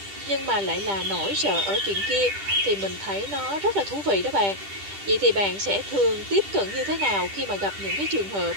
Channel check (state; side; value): late; left; 10 ms